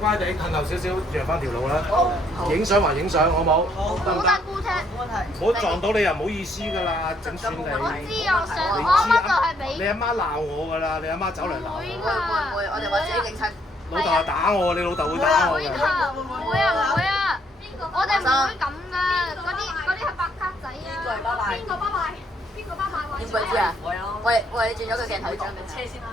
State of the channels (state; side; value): normal; both; correlation 0.69